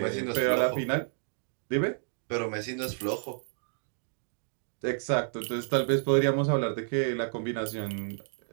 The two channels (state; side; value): silent; left; digital silence